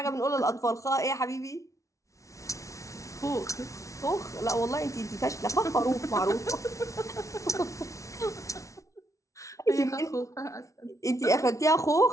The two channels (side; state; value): right; late; 0.15 ms